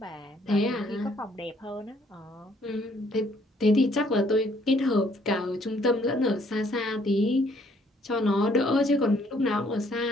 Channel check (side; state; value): both; normal; correlation 0.65